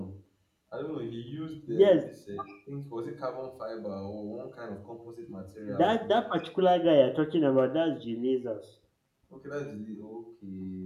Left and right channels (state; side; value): identical; both; correlation 1.00